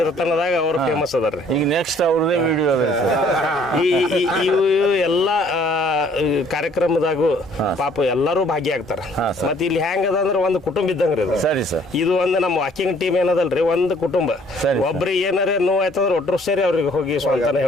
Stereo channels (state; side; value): normal; both; correlation 0.59